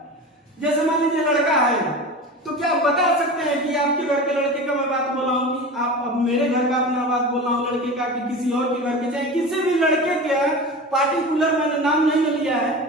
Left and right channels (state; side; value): normal; both; correlation 0.31